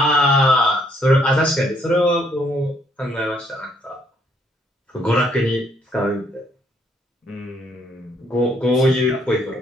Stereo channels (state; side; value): normal; both; correlation 0.68